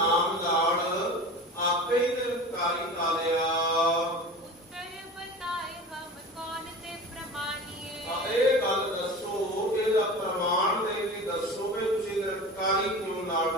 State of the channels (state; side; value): normal; both; correlation 0.34